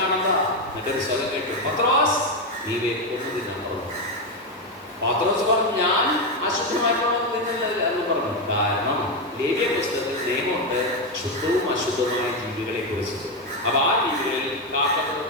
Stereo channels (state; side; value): normal; both; correlation 0.09